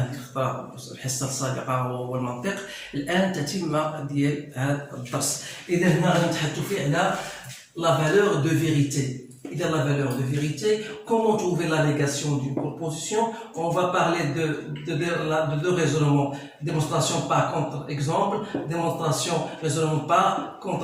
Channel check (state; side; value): identical; both; correlation 1.00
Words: الحصة السابقة هو المنطق، الآن تتمة ديال هذا الدرس. إذا هنا غادي نتحدثوا فيه على la valeur de vérité. إذا la valeur de vérité, comment trouver la négation d'une proposition? On va parler de deux raisonnements, démonstration par contre-exemple, démonstration raisonnement par